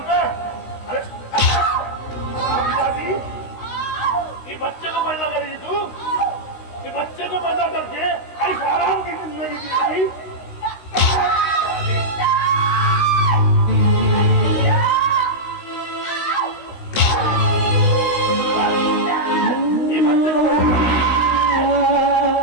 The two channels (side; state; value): right; late; 16 ms